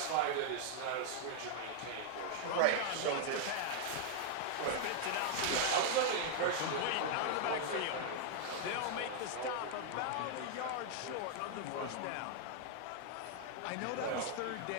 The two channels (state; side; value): different; both; correlation 0.00